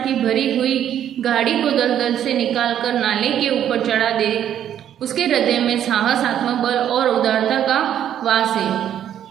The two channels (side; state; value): left; quieter; 10.3 dB